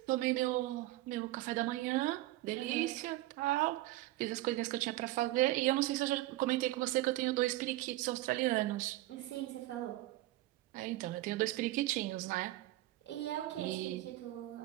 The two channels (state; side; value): quieter; left; 17.2 dB